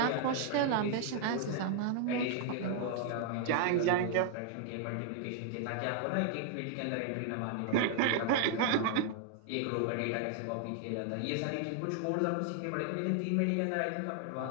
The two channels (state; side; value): different; both; correlation 0.00